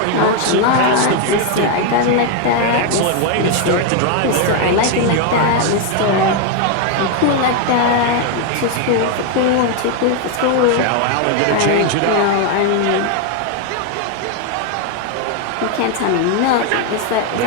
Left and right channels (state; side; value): different; both; correlation 0.01